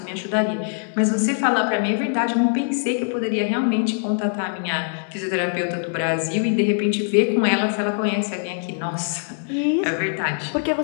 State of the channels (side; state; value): right; silent; digital silence